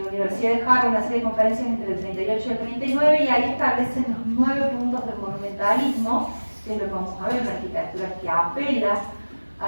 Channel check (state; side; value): inverted; both; correlation -1.00